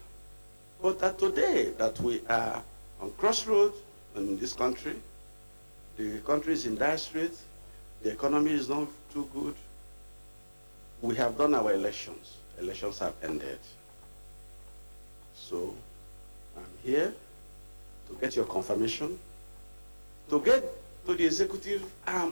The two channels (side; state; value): both; inverted; correlation -1.00